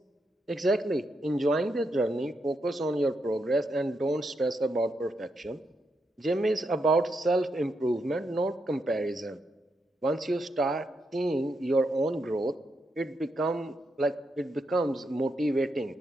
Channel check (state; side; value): normal; both; correlation 0.82